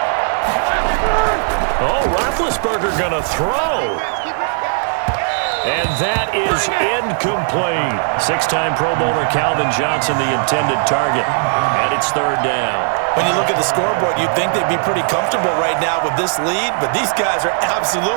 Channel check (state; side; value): silent; left; 55 dB below the other